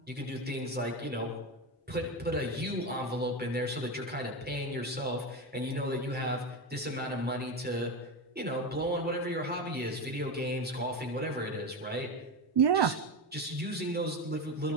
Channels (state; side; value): normal; both; correlation 0.18